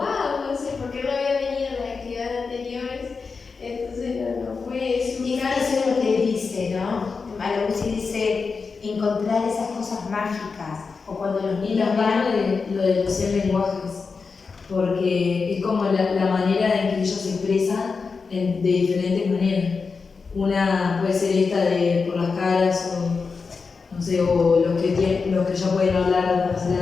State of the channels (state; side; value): quieter; right; 4.8 dB